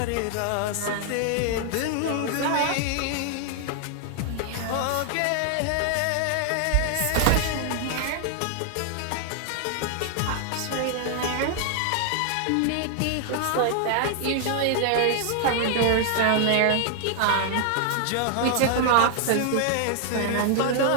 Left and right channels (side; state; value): both; different; correlation 0.00